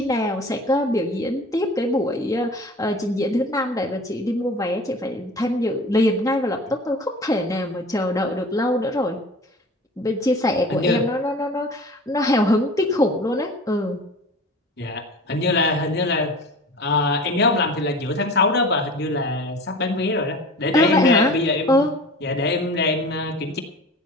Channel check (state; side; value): normal; both; correlation 0.39